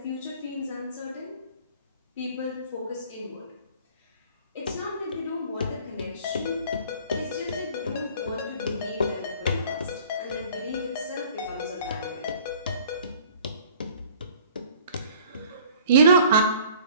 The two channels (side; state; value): both; inverted; correlation -0.51